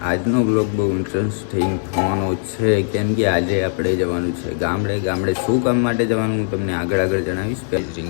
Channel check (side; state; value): right; silent; digital silence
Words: આજનો વ્લોગ બહુ ઇન્ટરેસ્ટિંગ થવાનો છે, કેમ કે આજે આપણે જવાનું છે ગામડે. શું કામ માટે જવાનું હું તમને આગળ જણાવીશ.